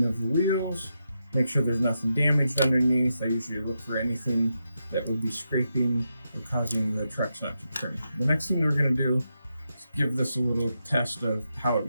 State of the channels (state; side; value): inverted; both; correlation -0.86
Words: of the wheels, make sure there's nothing damaged underneath. I usually look for anything that would be scraping or causing the trucks not to turn. The next thing we're going to do is give this a little test of how it